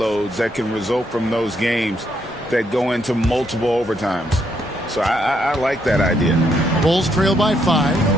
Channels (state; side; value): normal; both; correlation 0.75